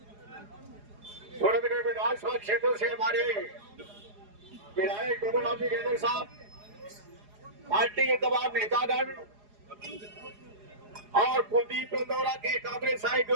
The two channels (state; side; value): late; left; 4.8 ms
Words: सूरतगढ़ विधानसभा क्षेत्र से हमारे विधायक गोविंद गेजर साहब, पार्टी के तमाम नेतागण और कुलदीप इंदौरा के कांग्रेस के